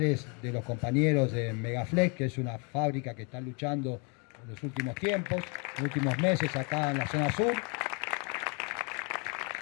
de los compañeros de Megaflex, que es una fábrica que está luchando en los últimos tiempos, en los últimos meses acá en la zona sur.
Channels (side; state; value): right; quieter; 34.5 dB